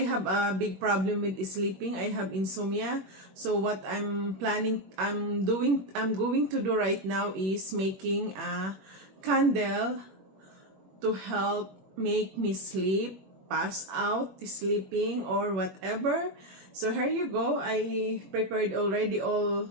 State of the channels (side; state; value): left; late; 21 ms